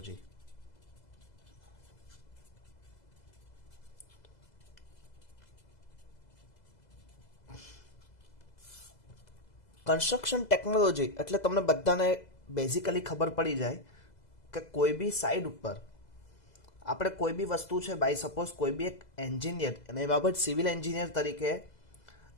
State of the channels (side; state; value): right; late; 2.0 ms